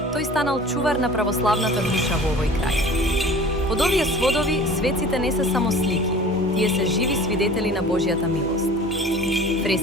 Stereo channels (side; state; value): both; normal; correlation 0.43